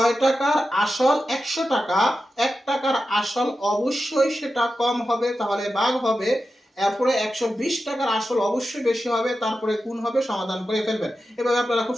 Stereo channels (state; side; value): normal; both; correlation 0.91